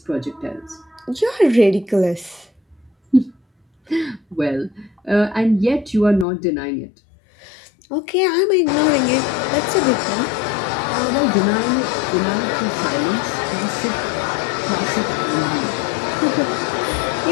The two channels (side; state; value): right; drops out; at 6.2 s